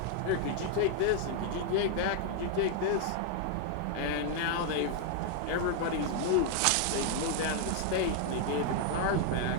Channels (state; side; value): different; both; correlation 0.00